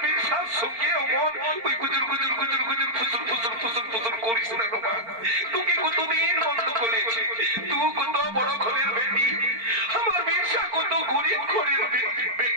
বিশ্বাস সঙ্গে অমন ওই গুজুর গুজুর গুজুর গুজুর ফুসুর ফুসুর ফুসুর ফুসুর করিস না মা তোকে কতদিন বন্ধ করেছি তুই কত বড় ঘরের বেটি আমার বিরসা কত গরিব ঘরের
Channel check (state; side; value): late; left; 4.4 ms